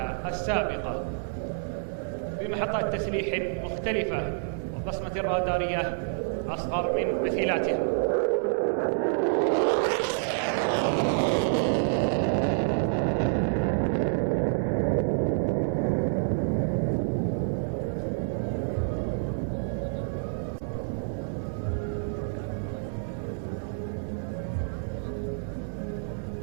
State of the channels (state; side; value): silent; left; digital silence